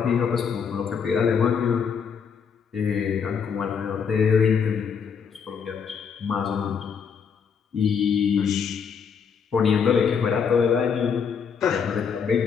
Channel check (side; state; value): right; quieter; 6.6 dB